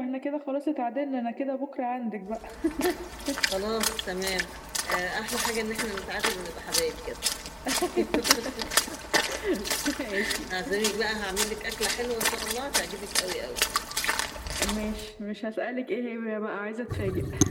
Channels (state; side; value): identical; both; correlation 1.00